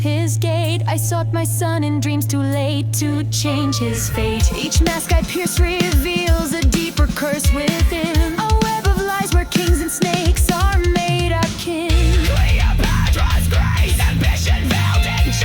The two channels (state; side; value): identical; both; correlation 1.00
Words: gate, I sought my son in dreams too late to change his fate. Each mask I pierce reveals a deeper curse within, a web of lies where kings and snakes are made our kin. Cleopatra's grace, ambition veiled in